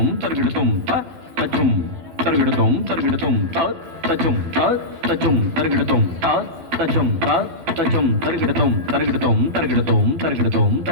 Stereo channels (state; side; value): late; left; 12 ms